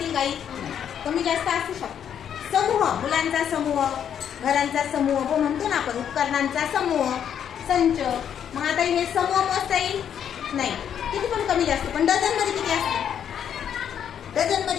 काही कमी जास्त असू शकतो. समूह, मुलांचा समूह, घरांचा समूह हो म्हणतो ना आपण, उपकरणांचा समूह, संच. मग आता हे समूह मोजता येईल? नाही. किती पण कमी जास्त. पण डझन मध्ये किती असते? डझन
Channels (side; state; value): right; quieter; 8.9 dB